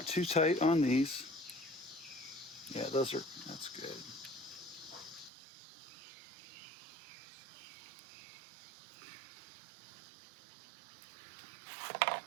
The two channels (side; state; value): left; drops out; at 5.3 s